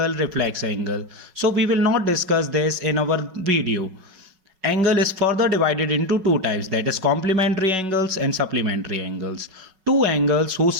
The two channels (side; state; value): left; late; 5.4 ms